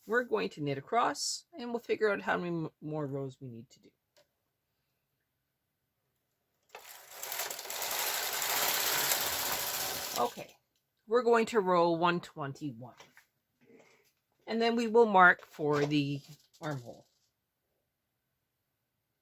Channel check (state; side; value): identical; both; correlation 1.00